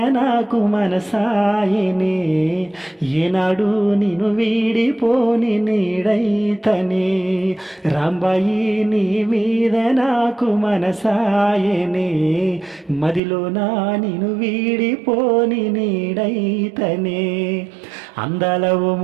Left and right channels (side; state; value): left; drops out; at 13.2 s